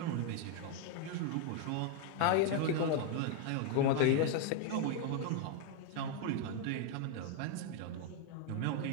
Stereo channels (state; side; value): different; both; correlation 0.01